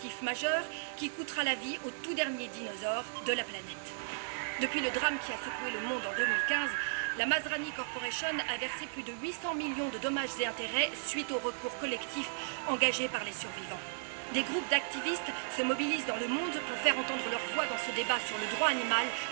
majeur qui coûtera la vie au tout dernier dinosaure de la planète. Depuis le drame qui a secoué le monde en 2015, la Masrani Corporation a versé plus de 800 millions de dommages et intérêts suite au recours collectif engagé par les survivants. Des groupes d'activistes se mobilisent dans le monde pour faire entendre leur voix dans ce débat sur le droit animal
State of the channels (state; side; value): silent; left; 54 dB below the other